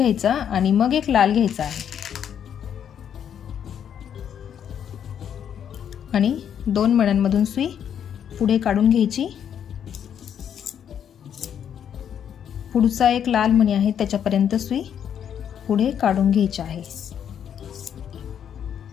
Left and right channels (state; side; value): quieter; right; 8.8 dB